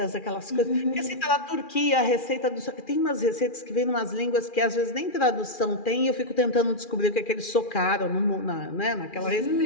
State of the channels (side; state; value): right; late; 2.4 ms